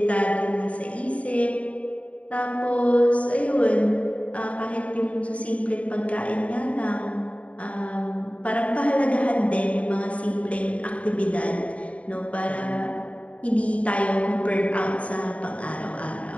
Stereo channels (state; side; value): late; right; 0.066 ms